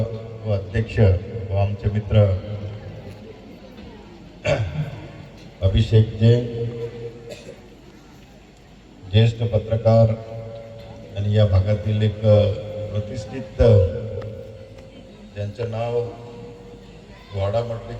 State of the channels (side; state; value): both; identical; correlation 1.00